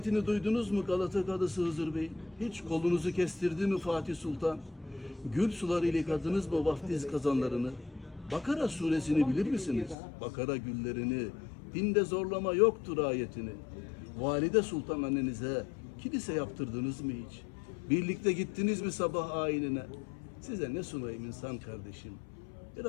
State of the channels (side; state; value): right; drops out; at 10.0 s